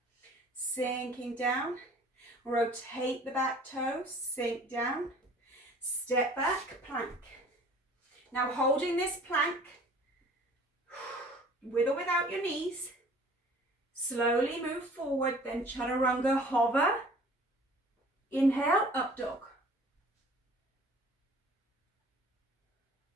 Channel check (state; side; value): normal; both; correlation 0.50